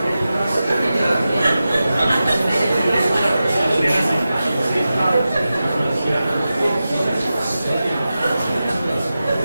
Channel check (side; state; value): both; inverted; correlation -0.93